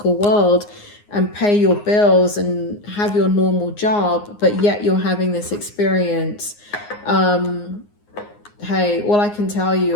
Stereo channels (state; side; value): late; right; 9.7 ms